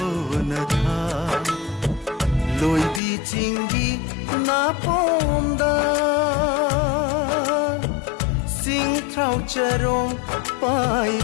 न था लोई भी चिंगी ना पोंदा सिंगथ्राउ चरों पाई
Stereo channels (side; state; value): right; drops out; at 3.0 s